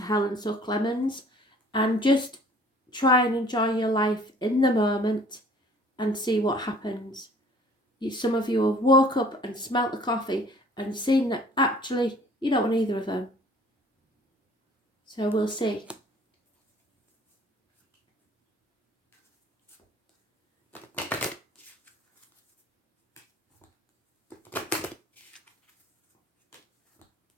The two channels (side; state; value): both; normal; correlation 0.53